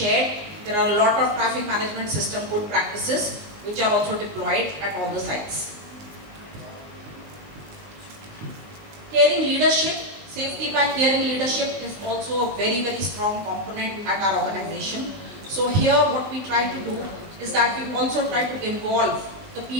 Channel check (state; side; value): late; left; 19 ms